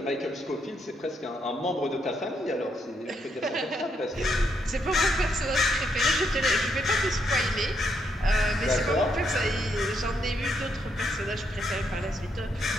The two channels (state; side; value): normal; both; correlation 0.77